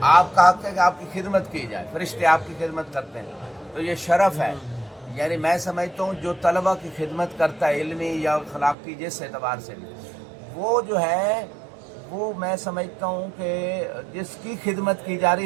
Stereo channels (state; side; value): drops out; left; at 8.8 s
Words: آپ کا حق ہے کہ آپ کی خدمت کی جائے, فرشتے آپ کی خدمت کرتے ہیں, تو یہ شرف ہے. یعنی میں سمجھتا ہوں جو طلبہ کی خدمت کرتا ہے علمی یا اخلاقی جس اعتبار سے بھی, وہ جو ہے وہ میں سمجھتا ہوں کہ جس کی خدمت کی جا رہی